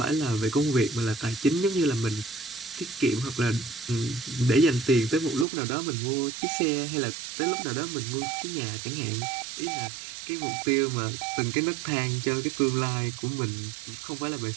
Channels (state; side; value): drops out; left; at 5.5 s